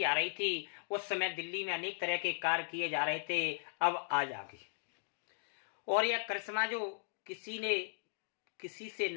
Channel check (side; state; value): right; silent; digital silence